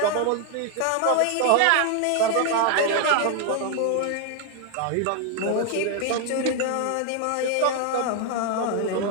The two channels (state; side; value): different; both; correlation 0.01